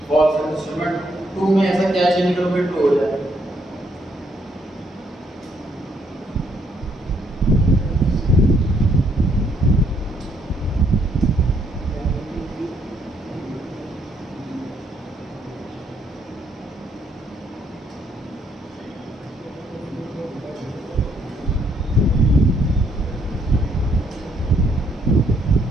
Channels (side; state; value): both; normal; correlation 0.71